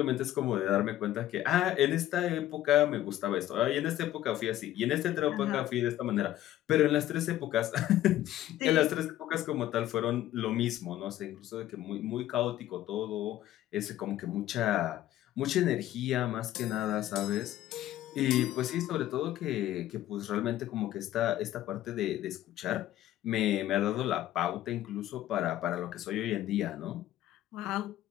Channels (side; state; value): right; quieter; 13.6 dB